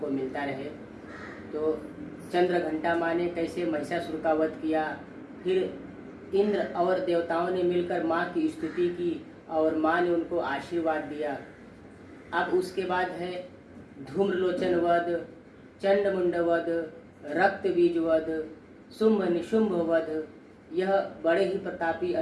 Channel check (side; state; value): both; identical; correlation 1.00